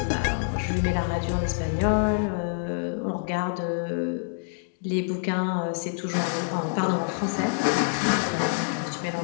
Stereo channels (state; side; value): silent; right; digital silence